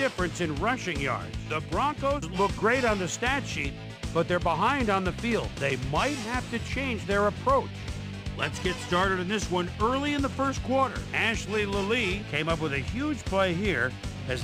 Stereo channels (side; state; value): both; identical; correlation 1.00